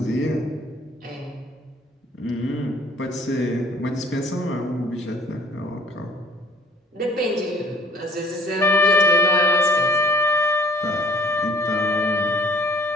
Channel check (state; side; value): normal; both; correlation 0.54